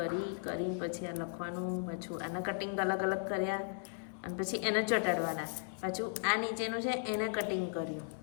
પછી આ લખવાનું. પાછું આના કટિંગ અલગ કર્યા અને પછી એને ચોંટાડવાના. પાછું આ નીચેનું છે એને કટિંગ કર્યું.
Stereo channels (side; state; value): right; silent; 54 dB below the other